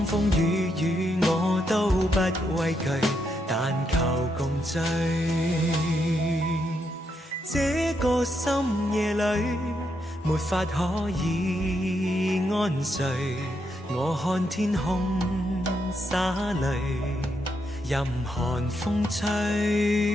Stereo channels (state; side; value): normal; both; correlation 0.80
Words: 風雨雨我都不畏懼，但求共聚。這個深夜裏沒法可以安睡，我看天空灑淚，任寒風吹。